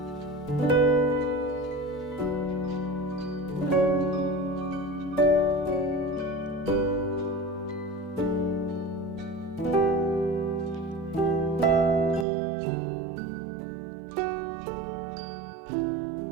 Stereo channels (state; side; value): drops out; left; at 12.2 s